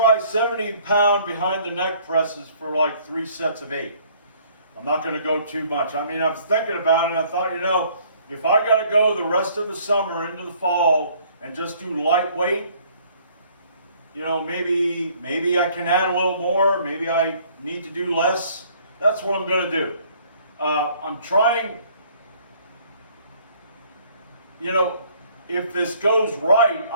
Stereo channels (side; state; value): both; inverted; correlation -0.59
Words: 70-pound behind the neck presses for like 3 sets of 8. I'm not gonna go too much. I mean, I was thinking about it and I thought, you know, if I gotta go the rest of the summer into the fall and just do lightweight, you know, maybe I can add a little more. Maybe I need to do less. That's what I'm going to do. I'm trying, you know, if this goes right,